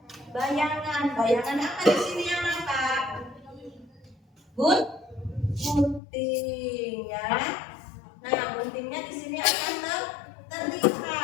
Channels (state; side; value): drops out; right; at 6.0 s